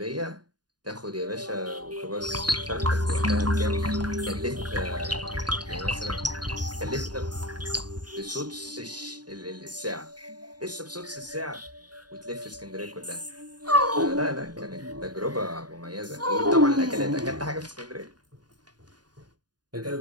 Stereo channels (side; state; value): left; late; 0.70 ms